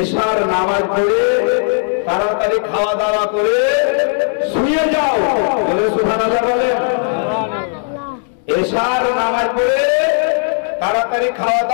নামাজ পড়ে তাড়াতাড়ি খাওয়া দাওয়া করে শুয়ে যাও। বলে সুবহানাল্লাহ বলে। এশার নামাজ পড়ে তাড়াতাড়ি খাওয়া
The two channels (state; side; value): silent; right; 63 dB below the other